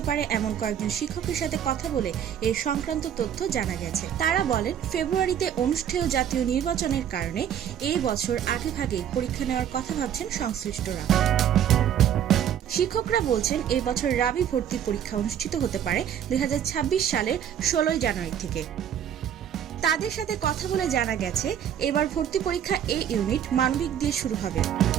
পারে এমন কয়েকজন শিক্ষকের সাথে কথা বলে এ সংক্রান্ত তথ্য জানা গেছে। তারা বলেন, ফেব্রুয়ারিতে অনুষ্ঠেয় জাতীয় নির্বাচনের কারণে এই বছর আগেভাগে পরীক্ষা নেওয়ার কথা ভাবছেন সংশ্লিষ্টরা। শিক্ষকরা বলছেন, এই বছর রাবি ভর্তি পরীক্ষা অনুষ্ঠিত হতে পারে 2026 সালের 16 জানুয়ারি থেকে। তাদের সাথে কথা বলে জানা গেছে, এবার ভর্তি পরীক্ষা এ ইউনিট মানবিক দিয়ে শুরু হবে।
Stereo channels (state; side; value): quieter; left; 9.5 dB